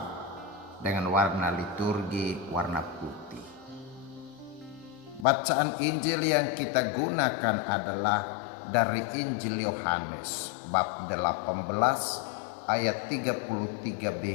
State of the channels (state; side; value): drops out; right; at 5.2 s